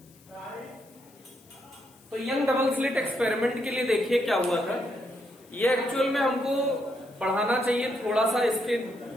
तो यंग डबल स्लिट एक्सपेरिमेंट के लिए देखिए क्या हुआ था। ये एक्चुअल में हमको पढ़ाना चाहिए थोड़ा सा इसके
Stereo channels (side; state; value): left; noise; hiss, 28 dB below the sound